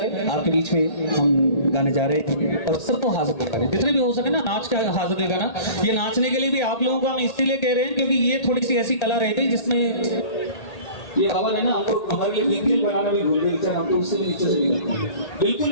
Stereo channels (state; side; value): late; right; 1.8 ms